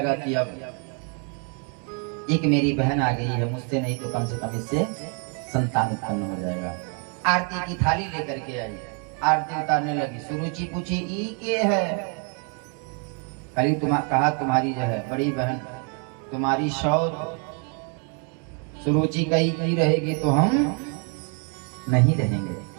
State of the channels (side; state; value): left; quieter; 38.7 dB